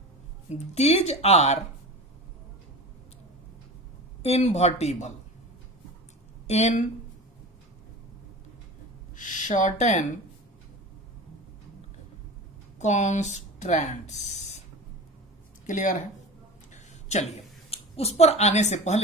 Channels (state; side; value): normal; both; correlation 0.32